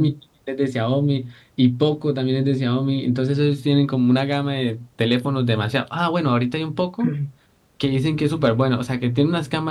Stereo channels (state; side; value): identical; both; correlation 1.00